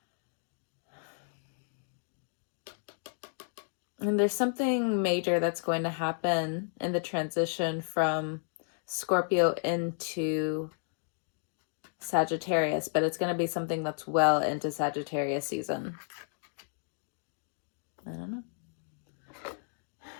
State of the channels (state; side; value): silent; right; digital silence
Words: And there's something major that's going to happen in the transition from Scorpio into Sagittarius, but it's going to be something that's well into Sagittarius season. I don't know.